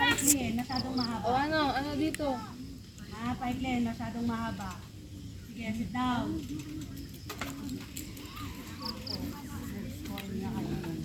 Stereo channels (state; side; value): identical; both; correlation 1.00